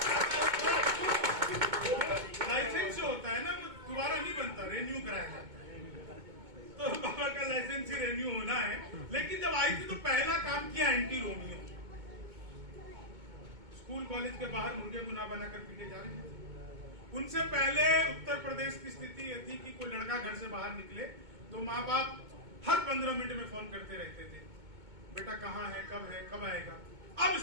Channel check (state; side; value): late; left; 2.2 ms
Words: लाइसेंस जो होता है ना वो दोबारा नहीं बनता, रेन्यू कराया जाता है। तो बाबा का लाइसेंस ही रेन्यू होना है। लेकिन जब आई थी तो पहला काम किया एंटी रोमियो। स्कूल कॉलेज के बाहर मुर्गे गुना बनाकर पीटे जा रहे हैं। उनसे पहले उत्तर प्रदेश की स्थिति ये थी कि कोई लड़का घर से बाहर निकले तो माँ बाप हर 15 मिनट में फोन करते रहते थे, बेटा कहाँ है, कब आएगा। अब